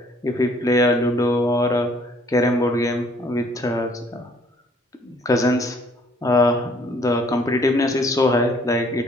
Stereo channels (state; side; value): normal; both; correlation 0.60